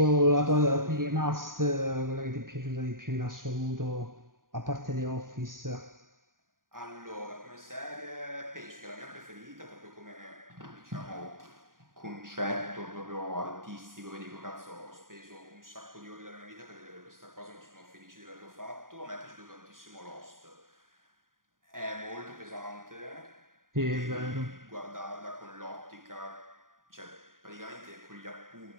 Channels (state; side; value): late; left; 0.90 ms